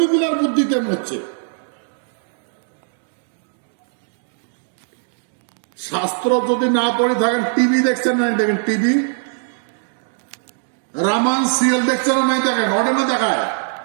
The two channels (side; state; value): left; silent; digital silence